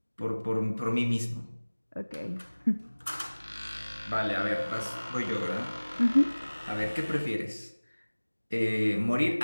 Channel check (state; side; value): inverted; both; correlation -1.00